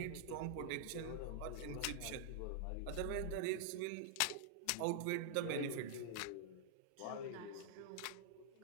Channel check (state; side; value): different; both; correlation -0.01